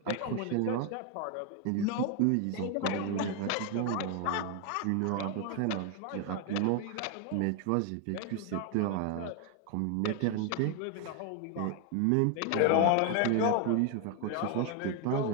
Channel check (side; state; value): both; different; correlation 0.01